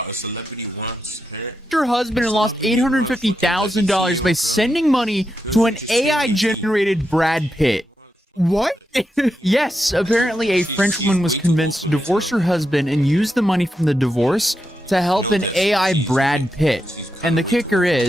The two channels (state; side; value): normal; both; correlation 0.86